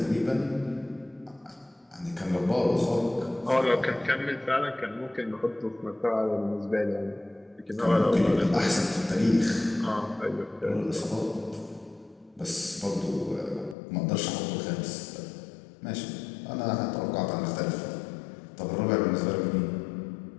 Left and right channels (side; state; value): right; drops out; at 13.8 s